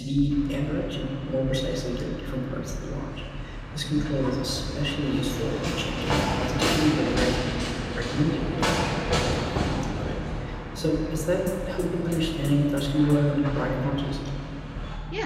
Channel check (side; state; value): both; identical; correlation 1.00